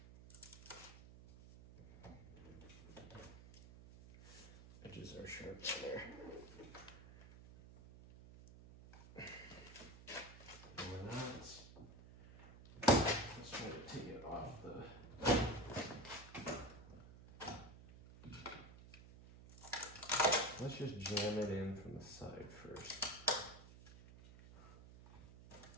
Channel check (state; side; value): noise; right; hum, 17 dB below the sound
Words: Edges are sharp down there. Take it off the let's just jam it in from the side first.